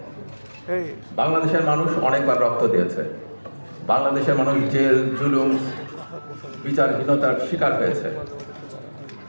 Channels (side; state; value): both; inverted; correlation -1.00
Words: বাংলাদেশের মানুষ অনেকবার রক্ত দিয়েছে। বাংলাদেশের মানুষ জেল, জুলুম, বিচারহীনতার শিকার হয়েছে।